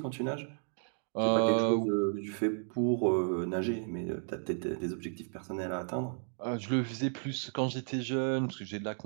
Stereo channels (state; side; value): silent; left; 56 dB below the other